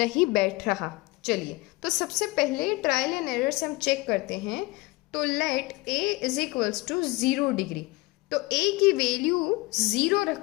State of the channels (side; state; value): right; quieter; 22.1 dB